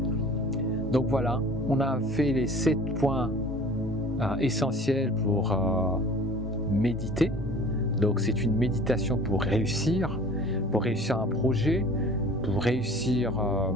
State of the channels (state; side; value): normal; both; correlation 0.46